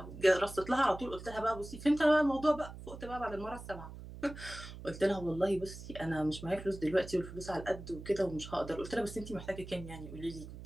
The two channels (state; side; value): noise; right; hum, 13 dB below the sound